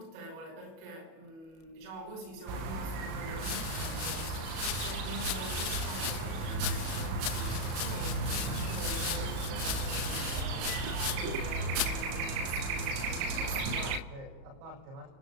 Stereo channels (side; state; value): left; late; 37 ms